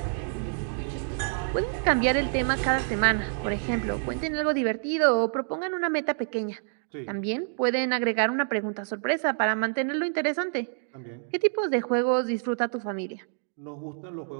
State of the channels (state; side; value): silent; left; 60 dB below the other